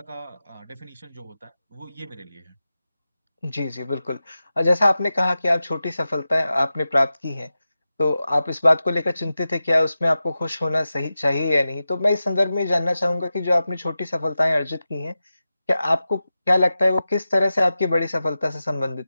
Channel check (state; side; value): inverted; both; correlation -0.93